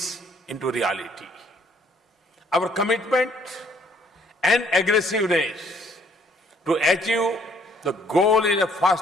into reality. Our commitment and aggressiveness to achieve the goal in a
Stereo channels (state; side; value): normal; both; correlation 0.63